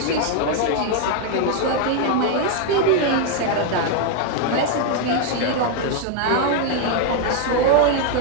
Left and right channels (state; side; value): different; both; correlation 0.00